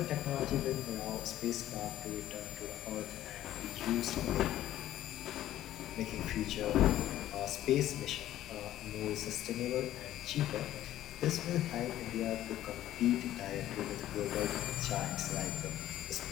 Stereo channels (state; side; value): quieter; right; 13.3 dB